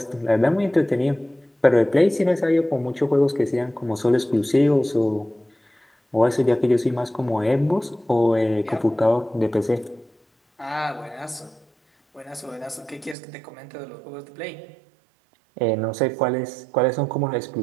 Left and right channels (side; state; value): left; drops out; at 13.2 s